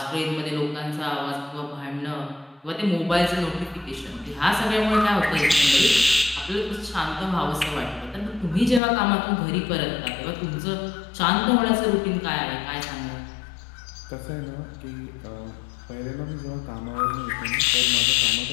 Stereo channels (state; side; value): drops out; right; at 8.8 s